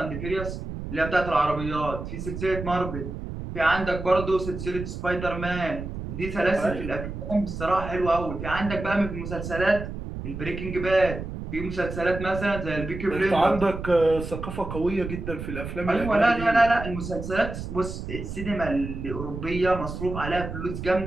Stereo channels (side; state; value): right; noise; rumble, 7 dB below the sound